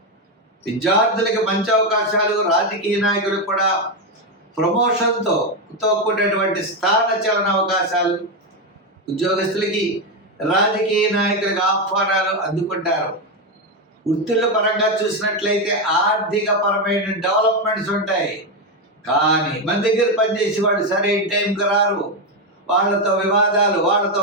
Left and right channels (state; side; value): normal; both; correlation 0.08